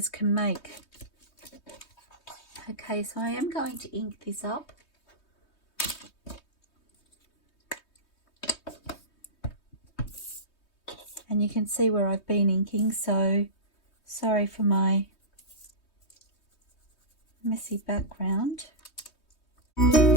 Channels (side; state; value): right; late; 3.2 ms